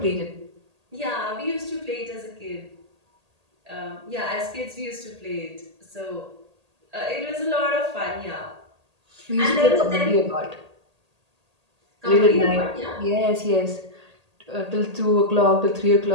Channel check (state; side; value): late; left; 1.8 ms